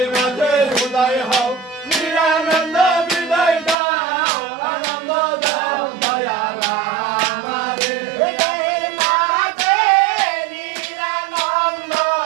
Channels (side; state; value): left; drops out; at 3.8 s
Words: মাঝে উদয় হও নিরানন্দ বিদায় দাও আনন্দ দাও দয়াল আমারে হৃদয়ের মাঝে নিরানন্দ